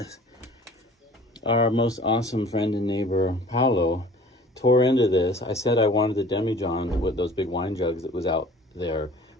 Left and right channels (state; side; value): normal; both; correlation 0.47